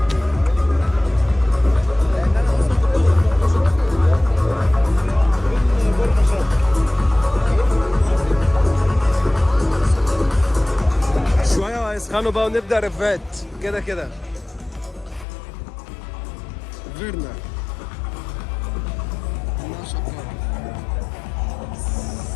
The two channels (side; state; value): right; drops out; at 15.2 s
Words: يسخنوا بقى ونبدأ رفات كده كده. فيرنا